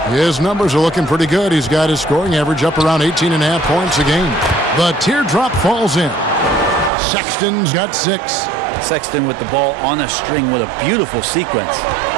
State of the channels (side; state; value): left; drops out; at 6.9 s